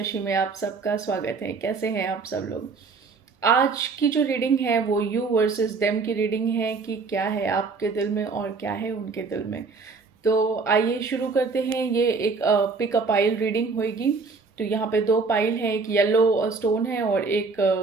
में आप सबका स्वागत है। कैसे हैं आप सब लोग? आज की जो रीडिंग है वो यू वर्सेस देम की रीडिंग है कि क्या है आपके दिल में और क्या है उनके दिल में। तो आइए शुरू करते हैं। ये एक पिक अ पाइल रीडिंग होगी। तो यहाँ पे दो पाइल है, एक येलो स्टोन है और एक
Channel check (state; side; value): quieter; left; 4.5 dB